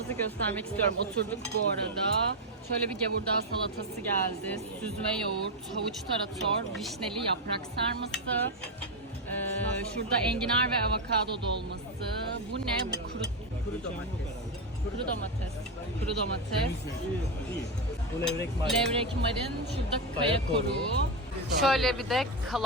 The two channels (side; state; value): both; normal; correlation 0.06